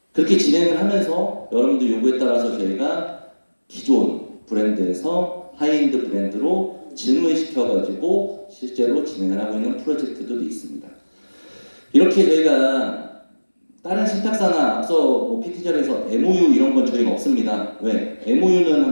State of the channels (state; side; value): inverted; both; correlation -1.00